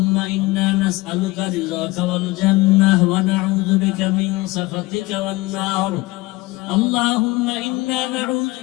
إنا نسألك رضاك والجنة ونعوذ بك من سخطك والنار. اللهم إنا نعوذ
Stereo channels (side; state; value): right; quieter; 21.3 dB